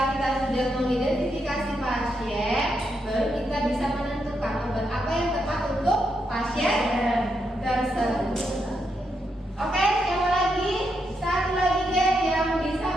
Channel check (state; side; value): normal; both; correlation 0.81